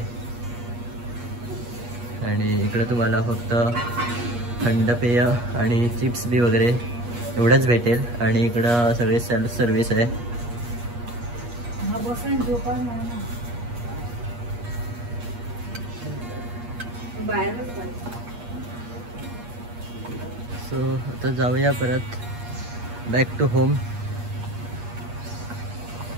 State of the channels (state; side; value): late; left; 8.4 ms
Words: आणि इकडं तुम्हाला फक्त थंड पेय आणि चिप्स बी वगैरे एवढंच भेटेल. आणि इकडं सगळे सेल्फ सर्विस आहे. सो आता जाऊया परत बॅक टू होम.